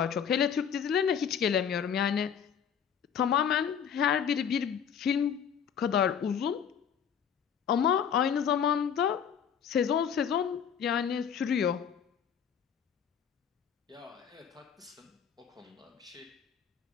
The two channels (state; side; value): quieter; right; 8.0 dB